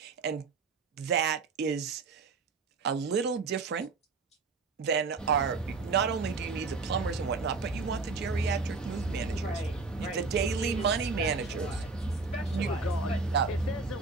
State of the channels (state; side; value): quieter; left; 4.3 dB